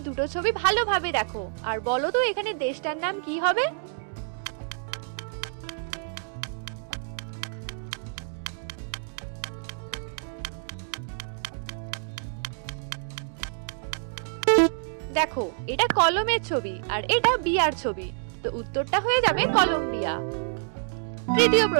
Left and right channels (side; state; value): left; silent; digital silence